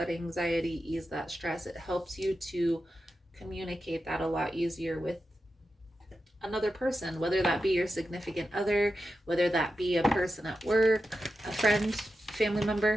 anxiety, ease that stress. It helps you to communicate that a lot easier with another person, whether that be your significant other, whether that be a person at work, a friend, family member.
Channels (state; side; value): normal; both; correlation 0.90